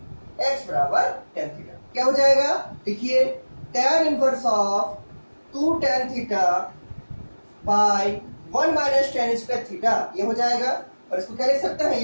x बराबर tan थीटा। क्या हो जाएगा, देखिए tan inverse of 2 tan theta by 1 minus tan square theta, ये हो जाएगा। और इसको क्या लिख सकते हैं,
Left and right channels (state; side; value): inverted; both; correlation -1.00